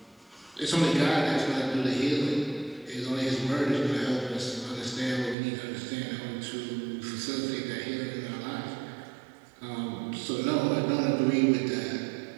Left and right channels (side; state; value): left; drops out; at 5.4 s